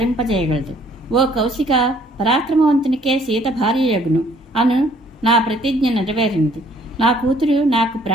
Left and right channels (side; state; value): both; normal; correlation 0.61